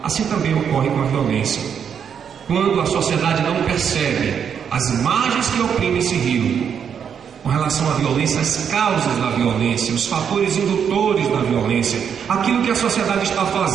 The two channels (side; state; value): left; quieter; 7.6 dB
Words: Assim também ocorre com a violência. Quando a sociedade não percebe as margens que oprimem esse rio, com relação à violência, as causas da violência, os fatores indutores da violência, aquilo que a sociedade está